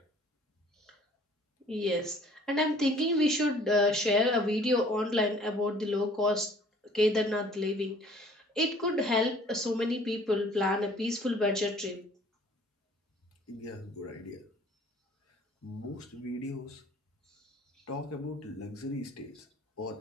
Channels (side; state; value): both; normal; correlation 0.54